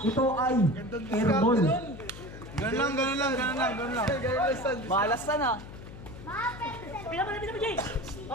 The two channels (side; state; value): left; noise; hum, 14 dB below the sound